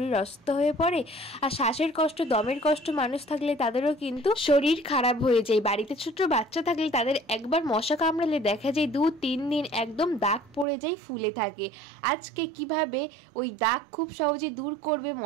অসুস্থ হয়ে পড়ে, আর শ্বাসের কষ্ট, দমের কষ্ট মানুষ থাকলে তাদেরও কিন্তু শরীর খারাপ হয়ে যায়। বাড়িতে ছোট বাচ্চা থাকলে তাদের একবার মশা কামড়ালে দেখা যায় 2-3 দিন একদম দাগ পড়ে যায়, ফুলে থাকে। আজকে কিভাবে ওই দাগ খুব সহজে দূর করবে,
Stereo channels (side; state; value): left; drops out; at 10.7 s